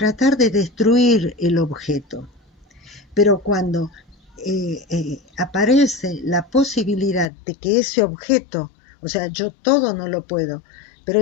de destruir el objeto. Pero cuando aparece la posibilidad de que ese objeto, o sea, yo todo no lo puedo, pero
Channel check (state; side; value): drops out; right; at 7.2 s